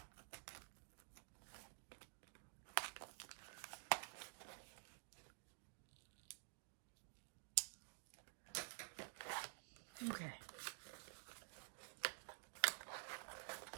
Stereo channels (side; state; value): left; silent; digital silence